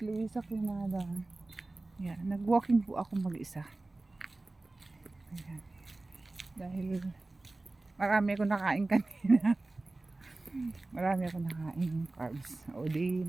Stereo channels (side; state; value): left; quieter; 3.0 dB